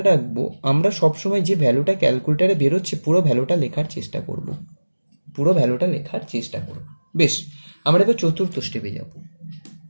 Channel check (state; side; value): inverted; both; correlation -1.00